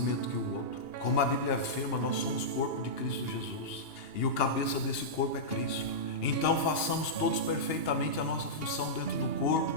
que o outro. Como a Bíblia afirma, nós somos corpo de Cristo Jesus e o cabeça desse corpo é Cristo. Então façamos todos perfeitamente a nossa função dentro do corpo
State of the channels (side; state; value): right; late; 2.8 ms